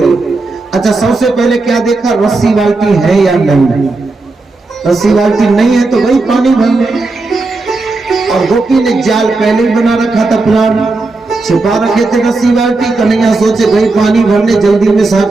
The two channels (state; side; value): quieter; left; 3.4 dB